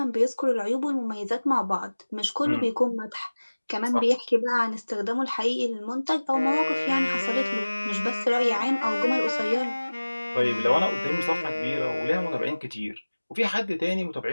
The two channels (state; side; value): inverted; both; correlation -1.00